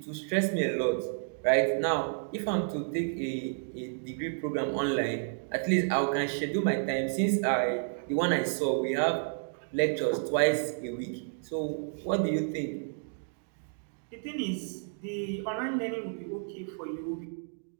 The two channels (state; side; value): silent; left; digital silence